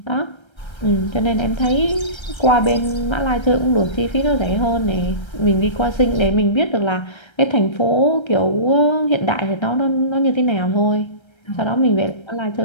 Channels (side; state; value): right; late; 1.3 ms